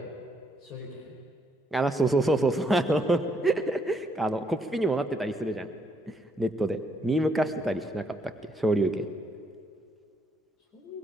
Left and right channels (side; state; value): both; normal; correlation 0.73